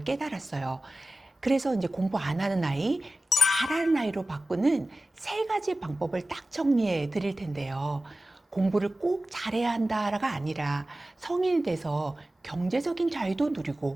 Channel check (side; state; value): both; normal; correlation 0.95